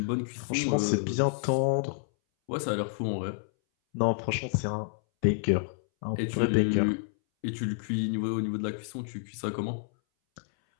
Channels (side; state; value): right; silent; 58 dB below the other